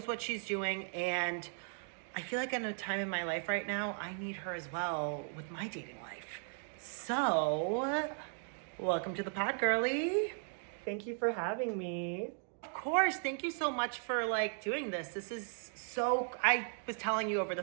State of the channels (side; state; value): left; silent; 53 dB below the other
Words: what she's doing, and I feel like in a time in my life right now, I need her as well with my dating life. So, welcome to the pod, girly. Thank you for having me. Of course. Thank you so much for doing this. This is so, I was telling you over the